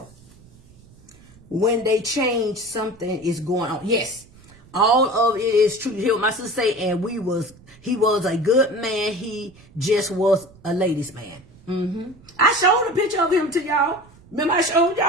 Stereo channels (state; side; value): noise; right; rumble, 25 dB below the sound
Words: When they change, something is going on. Yes, all of it is true. You hear what my sister say? And he was a good man. He just was a ladies' man. I showed a picture of him to y'all. Remember I showed